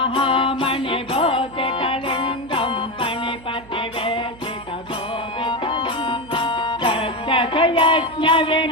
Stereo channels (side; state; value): right; noise; hum, 21 dB below the sound